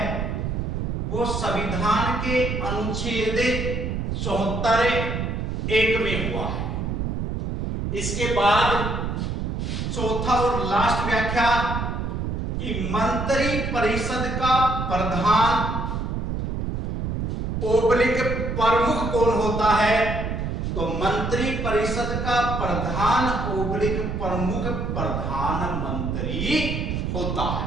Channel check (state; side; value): noise; right; rumble, 2 dB below the sound